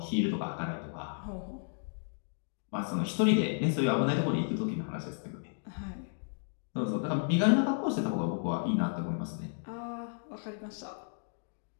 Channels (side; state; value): right; silent; digital silence